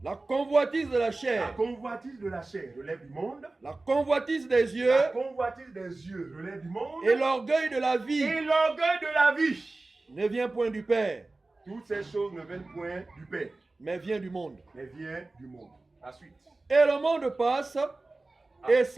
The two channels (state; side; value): quieter; left; 3.2 dB